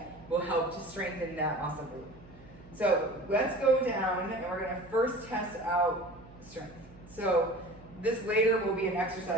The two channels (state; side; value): noise; right; hum, 22 dB below the sound